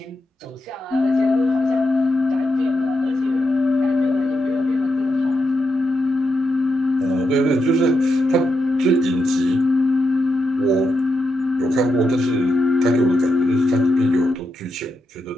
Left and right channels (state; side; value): normal; both; correlation 0.85